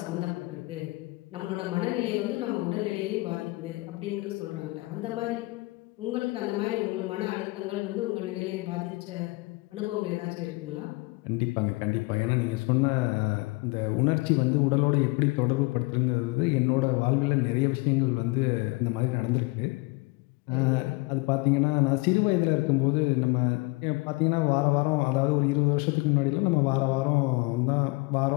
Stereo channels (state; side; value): quieter; right; 24.8 dB